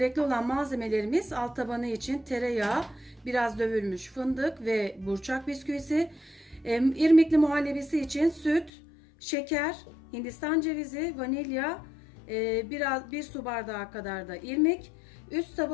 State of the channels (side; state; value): right; drops out; at 8.7 s